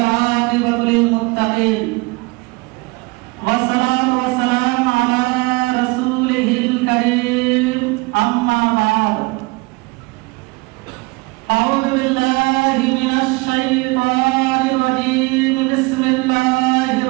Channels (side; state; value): left; quieter; 25.5 dB